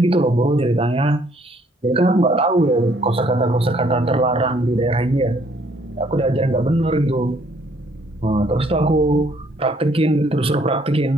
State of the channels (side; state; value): both; normal; correlation 0.64